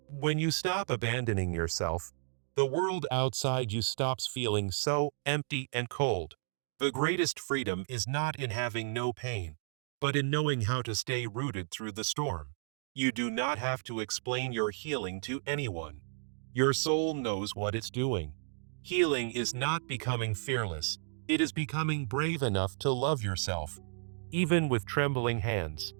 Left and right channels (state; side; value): silent; left; digital silence